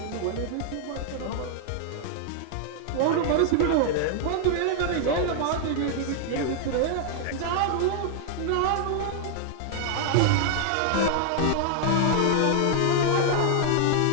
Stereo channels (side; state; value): both; different; correlation 0.00